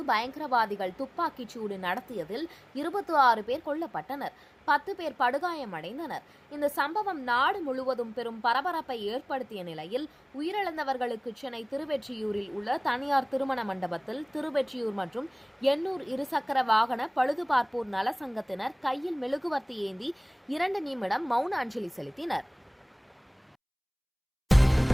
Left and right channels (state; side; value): identical; both; correlation 1.00